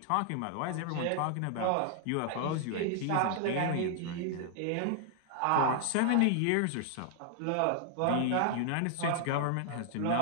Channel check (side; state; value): both; different; correlation 0.00